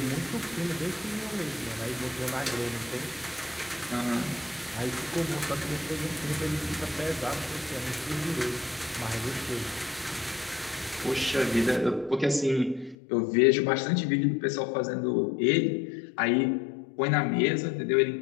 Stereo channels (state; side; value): drops out; right; at 13.0 s